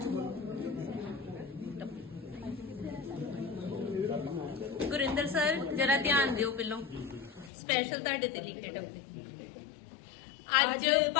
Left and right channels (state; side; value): drops out; right; at 7.5 s